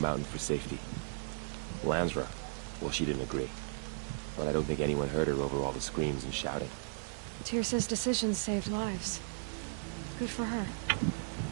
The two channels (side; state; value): left; silent; digital silence